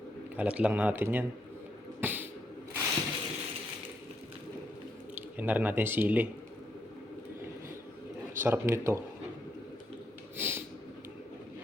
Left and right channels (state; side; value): normal; both; correlation 0.78